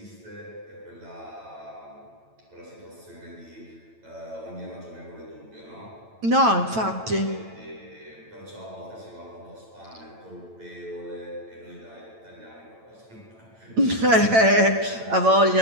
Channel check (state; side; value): late; left; 9.0 ms